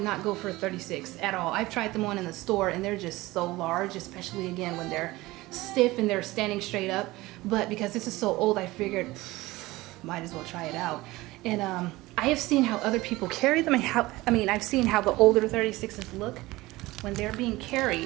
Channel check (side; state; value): left; quieter; 19.5 dB